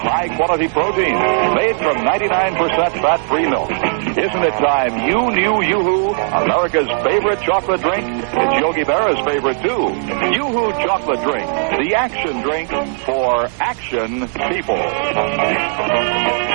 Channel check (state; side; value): silent; left; digital silence